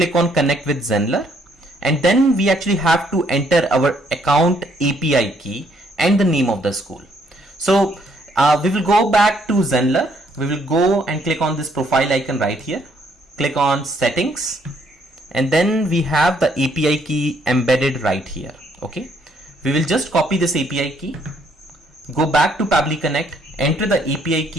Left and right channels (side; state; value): both; normal; correlation 0.68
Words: on connect with Zenler. And then we actually have to enter our account API key and the name of the school. So we will go back to Zenler. We will go and click on this profile icon right here. Click on settings. And then we have the API key embedded right here. Okay. We will just copy this API key go back to Pabbly Connect, enter the API